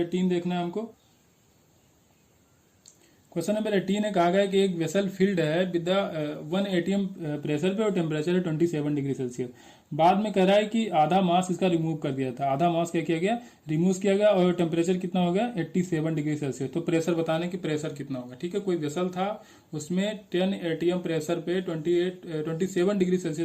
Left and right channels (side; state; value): both; identical; correlation 1.00